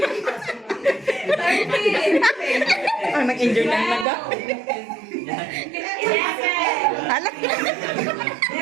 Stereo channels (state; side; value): drops out; left; at 4.0 s